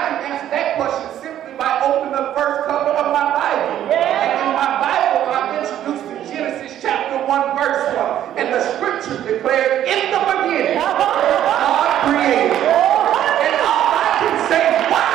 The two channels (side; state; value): left; quieter; 11.4 dB